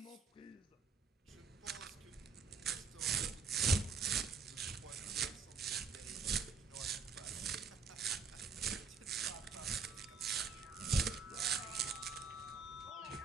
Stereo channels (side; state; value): left; quieter; 5.0 dB